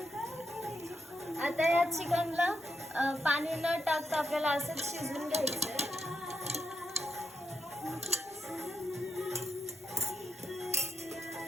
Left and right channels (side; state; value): both; normal; correlation 0.82